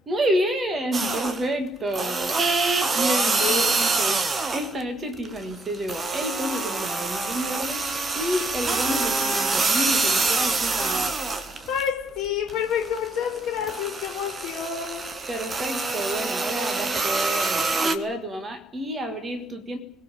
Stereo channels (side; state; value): both; normal; correlation 0.72